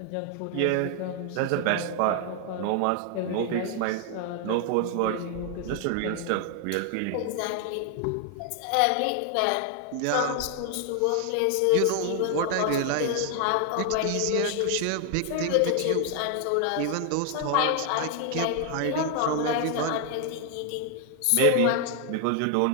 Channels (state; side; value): different; both; correlation 0.00